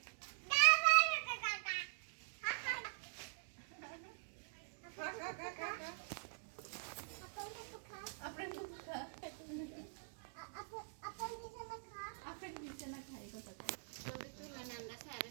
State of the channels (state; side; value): silent; left; digital silence